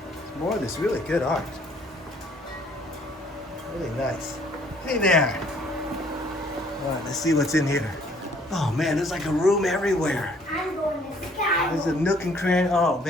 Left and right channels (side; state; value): both; normal; correlation 0.60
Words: More of this really good art. Really nice. Hey there. All right, let's see what's in here. Oh man, there's like a room everywhere. I'm going to sky. There's a nook and cranny. Oh